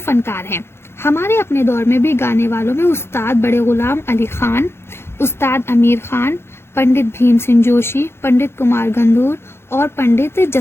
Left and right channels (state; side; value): late; right; 0.12 ms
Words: फनकार हैं। हमारे अपने दौर में भी गाने वालों में उस्ताद बड़े गुलाम अली खान, उस्ताद अमीर खान, पंडित भीम सिंह जोशी, पंडित कुमार गंधूर और पंडित